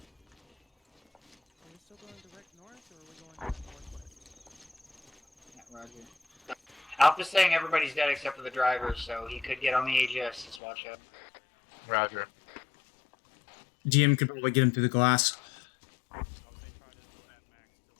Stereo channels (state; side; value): drops out; right; at 10.6 s